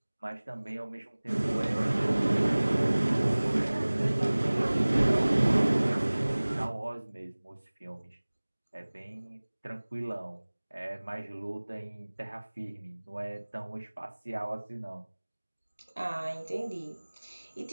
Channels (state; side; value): inverted; both; correlation -1.00